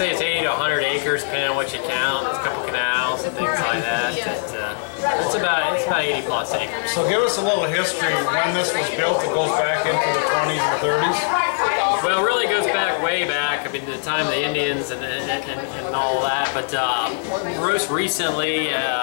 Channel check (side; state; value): right; silent; digital silence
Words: it's 80 to 100 acres, depending on what you count. There's a couple canals and things like that. It's about 80 plus acres. So give us a little history when this was built. It goes back into the 20s and 30s. Well, it really goes back way back. I mean, the time of the Indians and all that. But most recently,